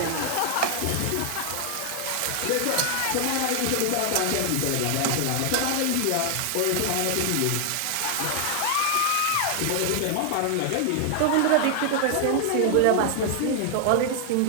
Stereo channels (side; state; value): both; different; correlation 0.00